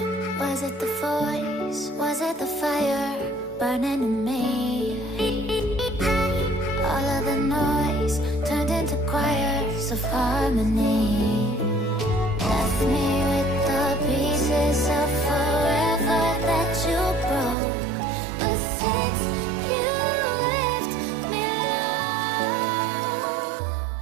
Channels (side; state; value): left; drops out; at 17.6 s